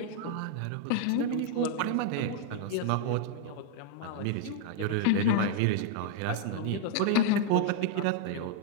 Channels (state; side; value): different; both; correlation 0.00